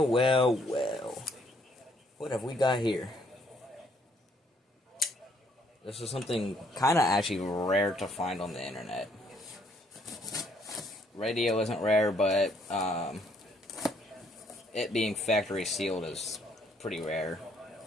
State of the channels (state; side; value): normal; both; correlation 0.67